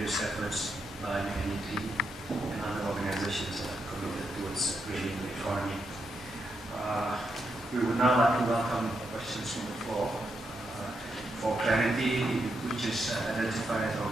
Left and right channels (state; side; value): normal; both; correlation 0.82